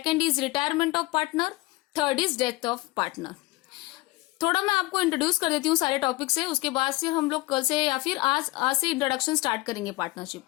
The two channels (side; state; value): right; quieter; 20.9 dB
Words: is retirement of partner, third is death of partner. थोड़ा मैं आपको इंट्रोड्यूस कर देती हूँ सारे टॉपिक से, उसके बाद से हम लोग कल से या फिर आज से इंट्रोडक्शन स्टार्ट करेंगे पार्टनरशिप